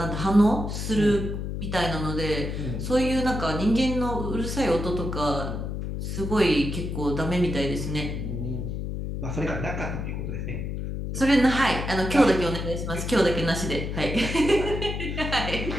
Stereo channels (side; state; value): left; noise; hum, 4 dB below the sound